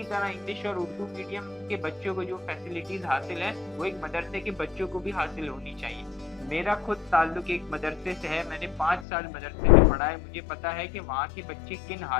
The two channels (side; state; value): right; drops out; at 9.1 s